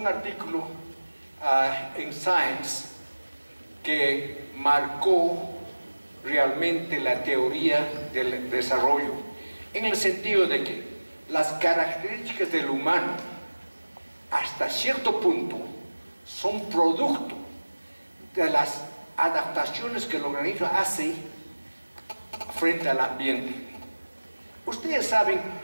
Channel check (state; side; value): inverted; both; correlation -1.00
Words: artículo en Science que marcó realmente la teoría del desarrollo, en el sentido de que las características del humano hasta cierto punto son producto de las adaptaciones que el organismo hace frente al ambiente. Ustedes saben